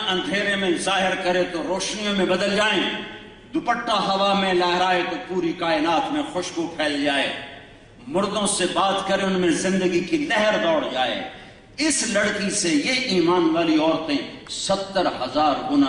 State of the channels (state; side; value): identical; both; correlation 1.00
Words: اندھیرے میں ظاہر کرے تو روشنیوں میں بدل جائیں، دوپٹہ ہوا میں لہرائے تو پوری کائنات میں خوشبو پھیل جائے، مردوں سے بات کرے ان میں زندگی کی لہر دوڑ جائے۔ اس لڑکی سے یہ ایمان والی عورتیں 70,000